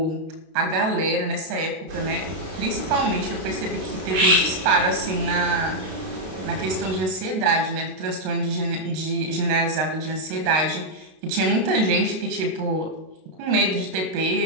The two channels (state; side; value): late; left; 32 ms